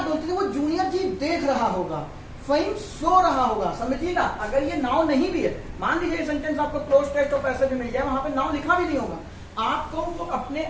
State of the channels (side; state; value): both; identical; correlation 1.00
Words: बोलते थे वो जूनियर जी देख रहा होगा, फहीम सो रहा होगा, समझिएगा। अगर ये नाउ नहीं भी है, मान लीजिए सेंटेंस आपको क्लोज टेक्स्ट और पैसेज में मिल जाए, वहां पे नाउ लिखा भी नहीं होगा, आपको वो अपने